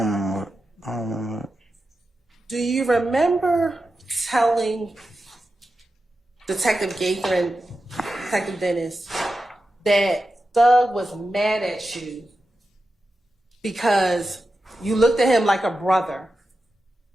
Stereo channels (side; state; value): both; normal; correlation 0.91